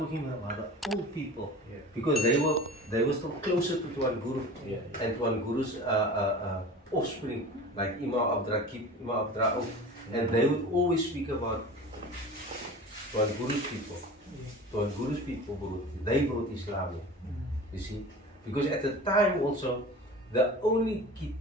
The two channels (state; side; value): normal; both; correlation 0.36